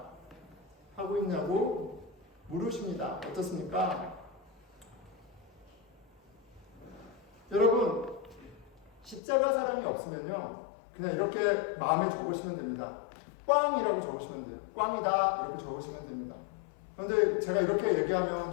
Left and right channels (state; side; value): drops out; right; at 9.2 s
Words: 하고 있냐고 물으십니다. 어떻습니까? 여러분, 십자가 사랑이 없으면요 그냥 이렇게 마음에 적으시면 됩니다. 꽝이라고 적으시면 돼요. 꽝이다 이렇게 적으시면 됩니다. 그런데 제가 이렇게 얘기하면